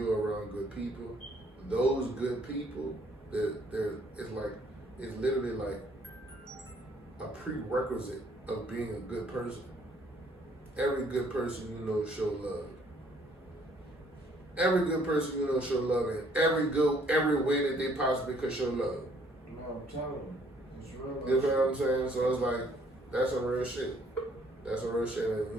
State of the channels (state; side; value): normal; both; correlation 0.63